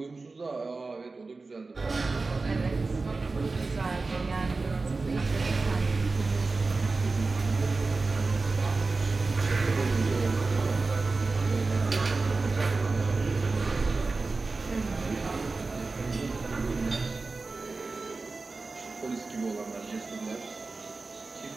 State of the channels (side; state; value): left; quieter; 3.8 dB